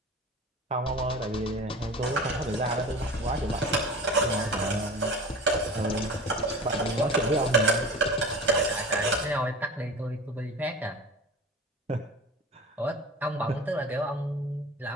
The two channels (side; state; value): both; normal; correlation 0.36